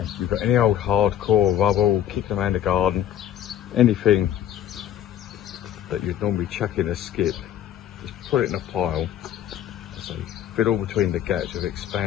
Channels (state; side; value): quieter; right; 11.0 dB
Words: if you've got any old hardcore rubble, kicking around the garden, anything that you'd normally chuck in a skip, just put it in a pile. So fill all between the gaps with